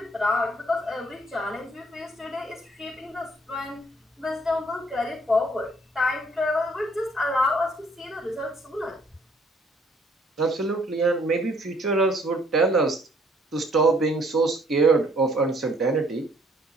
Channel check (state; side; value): normal; both; correlation 0.63